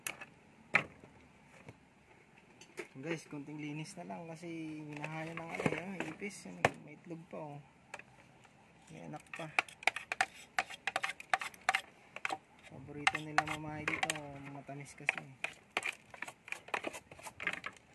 Guys, konting linis na lang kasi minahaya ng ano yung ipis. May itlog pa oh. May anak pa. Paborito nila mamahay dito, matamis kasi.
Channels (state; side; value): identical; both; correlation 1.00